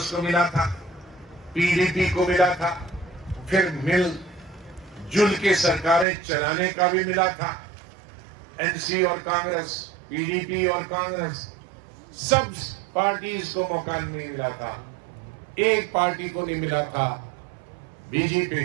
को मिला था, पीडीपी को मिला था, फिर मिलजुल के सरकारें चलाने का भी मिला था। एनसी और कांग्रेस, पीडीपी और कांग्रेस, सब पार्टीज को मौका नहीं मिला था। एक पार्टी को नहीं मिला था,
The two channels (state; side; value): drops out; left; at 6.1 s